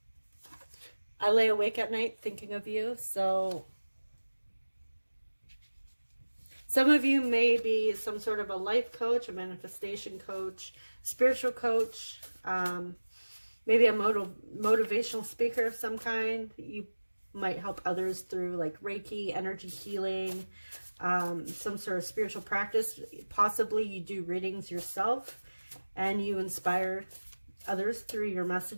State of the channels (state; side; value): inverted; both; correlation -1.00